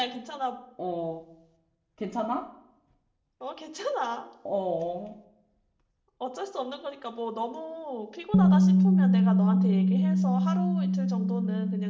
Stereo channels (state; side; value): identical; both; correlation 1.00